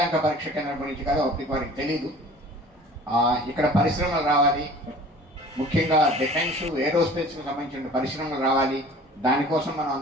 పరీక్ష కేంద్రం గురించి కాదు, అప్పటికి వారికి తెలీదు. ఇక్కడ పరిశ్రమలు రావాలి, ముఖ్యంగా డిఫెన్స్ ఏరోస్పేస్కి సంబంధించిన పరిశ్రమలు రావాలి, దానికోసం మనం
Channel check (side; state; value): both; normal; correlation 0.46